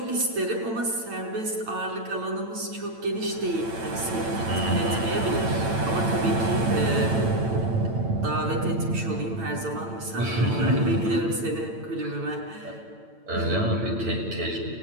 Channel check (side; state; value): left; late; 8.9 ms